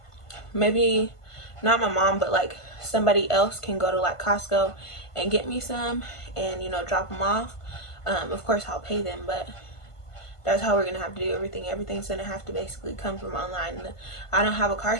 maybe not my mom, but like somebody else can go to like Costco and get me some and, you know, drop them off. Of course I'll pay them, but that's how we're gonna have to do everything. Everything's gonna have to basically come from online. I don't have a car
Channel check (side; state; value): right; late; 1.5 ms